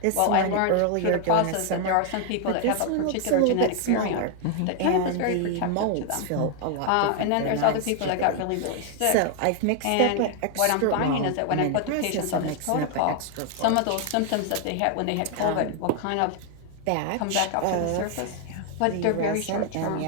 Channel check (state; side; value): different; both; correlation 0.00